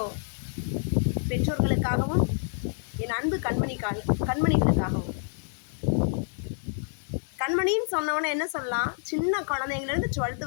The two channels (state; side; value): silent; right; digital silence